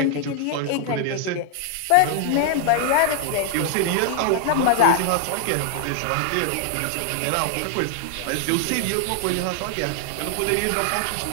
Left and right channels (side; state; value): both; different; correlation 0.00